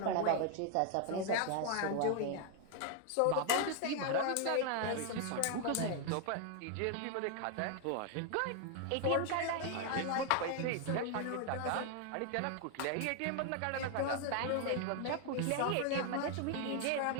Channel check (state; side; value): different; both; correlation 0.00